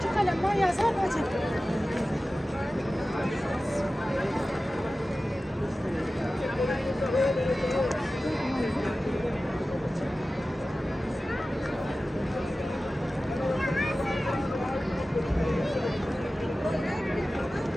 kalem var, yazar hacı.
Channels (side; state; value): both; normal; correlation 0.96